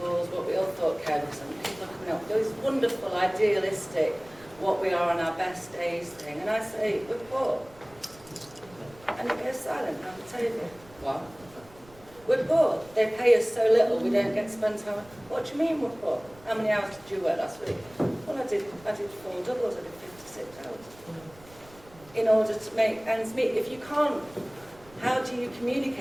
what we all thought care workers, and people are coming up with those wonderful, idealistic, what we are on our best days thing. And I say, we're poor. And it goes silent around the table. What? We're poor. They pay us so little, we don't get to spend time. What do you mean we're poor? How many hours did you work last week? Well, I did 4 doubles, I did 56 hours. In order to make ends meet. If you can't, how do you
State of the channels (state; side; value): noise; right; rumble, 24 dB below the sound